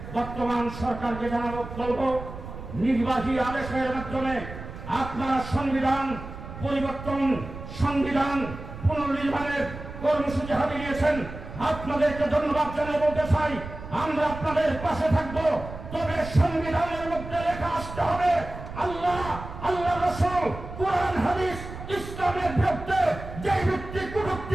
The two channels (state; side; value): noise; right; rumble, 11 dB below the sound